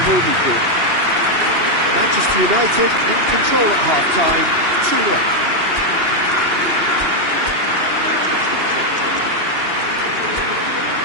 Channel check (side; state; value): left; late; 2.8 ms